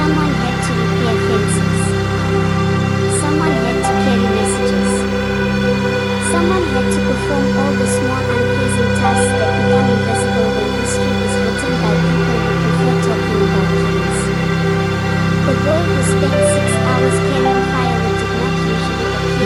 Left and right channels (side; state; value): both; identical; correlation 1.00